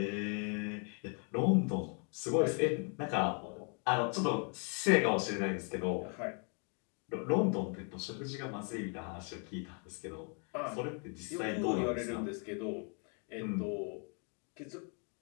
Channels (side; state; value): right; quieter; 39.6 dB